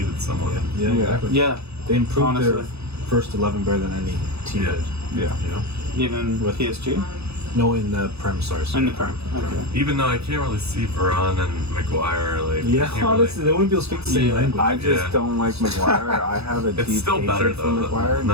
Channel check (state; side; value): late; left; 0.79 ms